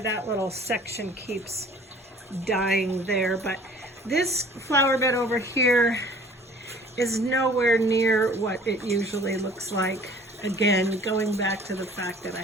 little section keeps dying there, but this flower bed over here is nowhere near what it usually looks like. Again, going back to the fact that I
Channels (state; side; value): normal; both; correlation 0.50